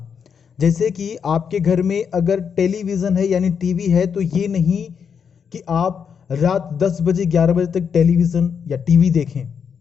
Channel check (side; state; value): right; quieter; 6.9 dB